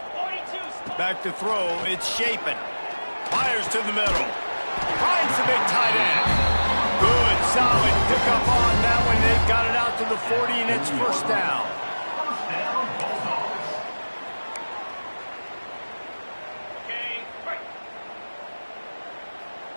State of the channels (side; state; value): both; inverted; correlation -1.00